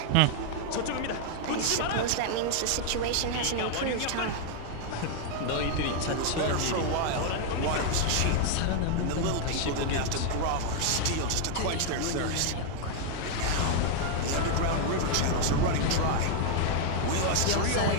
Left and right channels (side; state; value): both; different; correlation 0.00